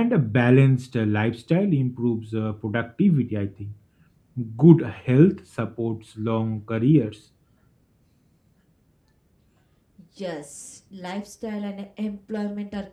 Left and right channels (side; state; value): both; identical; correlation 1.00